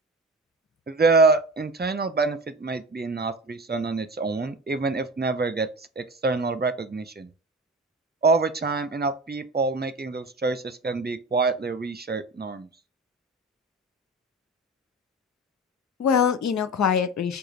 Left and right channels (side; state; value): both; normal; correlation 0.31